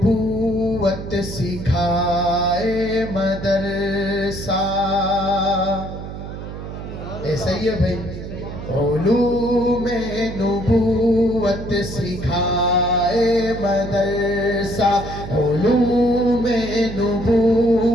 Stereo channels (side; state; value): right; noise; hum, 9 dB below the sound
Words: سکھائے مدرسہ. ایسا ہی ہے بھائی. علوم نبوت سکھائے مدرسہ, علوم